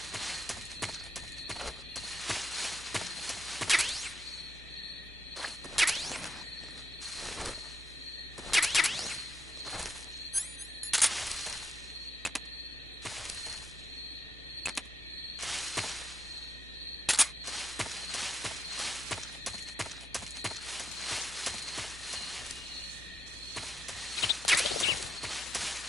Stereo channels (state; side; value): normal; both; correlation 0.81